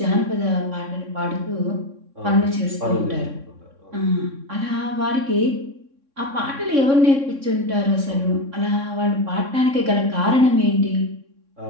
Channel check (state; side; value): late; left; 3.6 ms